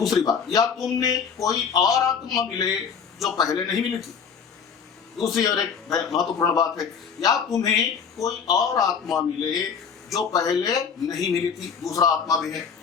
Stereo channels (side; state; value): right; quieter; 6.5 dB